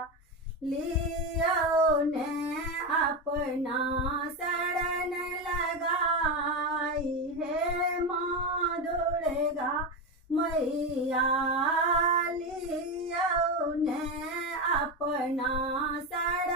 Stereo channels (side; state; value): both; normal; correlation 0.15